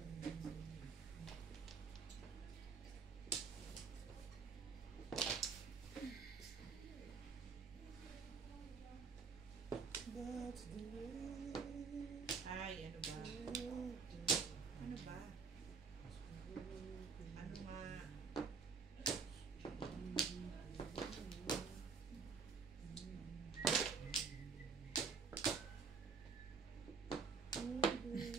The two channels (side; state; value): left; quieter; 5.2 dB